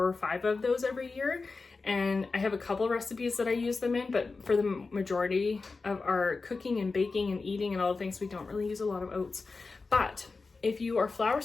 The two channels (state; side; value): quieter; right; 4.1 dB